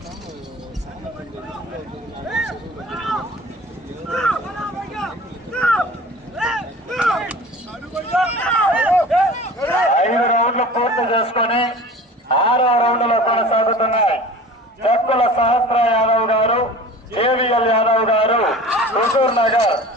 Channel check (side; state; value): both; normal; correlation 0.40